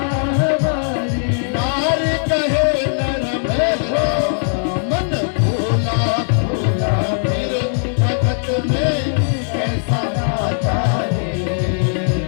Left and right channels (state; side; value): silent; right; digital silence